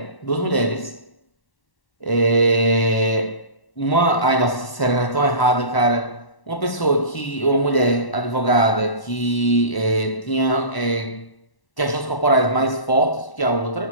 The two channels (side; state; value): right; late; 1.0 ms